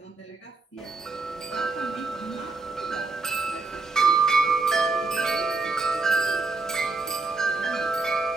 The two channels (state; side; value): quieter; left; 3.8 dB